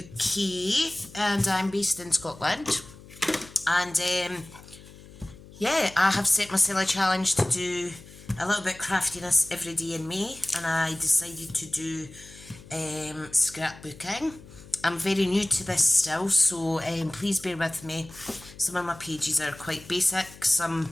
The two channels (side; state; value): left; noise; hum, 20 dB below the sound